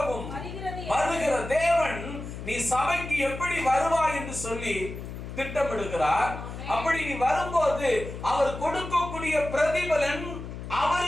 வருகிற தேவன். நீ சபைக்கு எப்படி வருவாய் என்று சொல்லி திட்டமிடுகிறார். அப்படி நீ வரும்போது அவர் கொடுக்கக்கூடிய பிரதிபலன்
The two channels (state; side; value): noise; left; hum, 9 dB below the sound